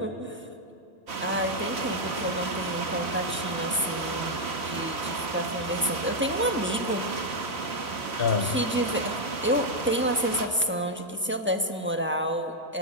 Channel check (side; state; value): both; normal; correlation -0.02